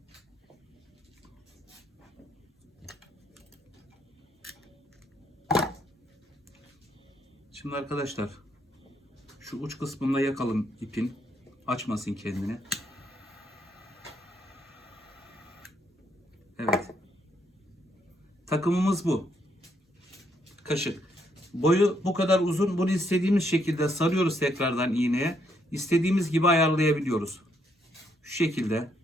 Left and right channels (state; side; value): normal; both; correlation 0.74